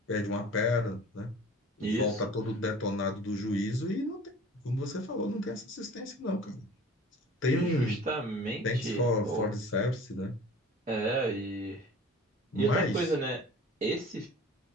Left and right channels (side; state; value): both; normal; correlation 0.44